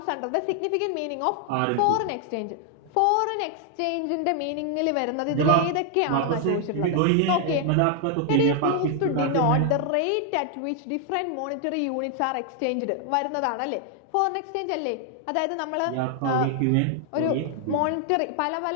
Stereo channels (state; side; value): different; both; correlation 0.00